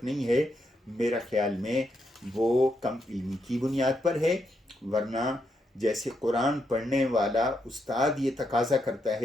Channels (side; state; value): both; normal; correlation 0.80